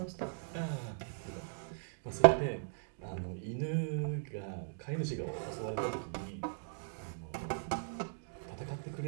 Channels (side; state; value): left; silent; digital silence